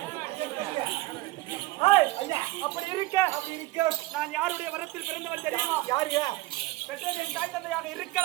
அப்படி இருக்க நான் யாருடைய வரத்தில் பிறந்தவன் தெரியுமா? யாருங்க? பெற்றோரின் தாய் தந்தையாக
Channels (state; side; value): quieter; left; 18.6 dB